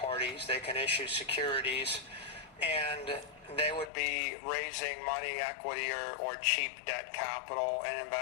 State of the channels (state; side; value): drops out; right; at 3.9 s